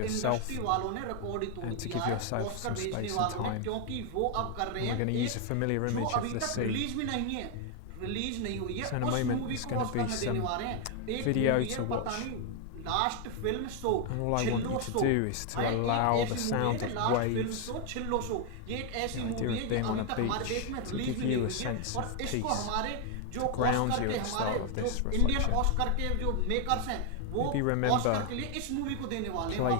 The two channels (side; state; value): both; different; correlation 0.00